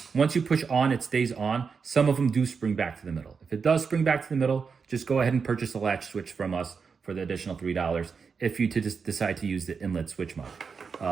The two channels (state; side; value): quieter; left; 5.6 dB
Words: Once you push on, it stays on. Some of them do spring back to the middle. If it does spring back to the middle, just go ahead and purchase a latch switch from us for the additional $3 if you just decide to use the inlet switch mod.